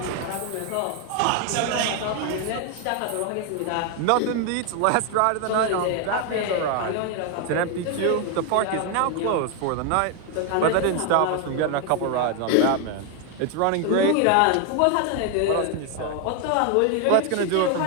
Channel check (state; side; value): different; both; correlation 0.00